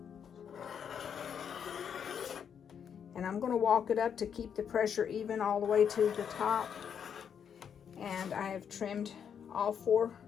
I'm going to walk it up to keep the pressure even all the way to the top. And I have trimmed all 4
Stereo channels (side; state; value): right; quieter; 7.8 dB